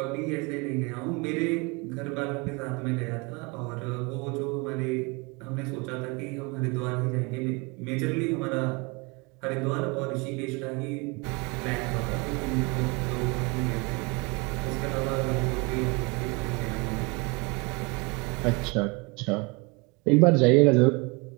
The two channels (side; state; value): left; quieter; 28.7 dB